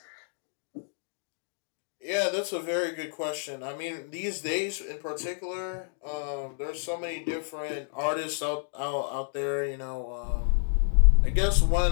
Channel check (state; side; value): silent; right; digital silence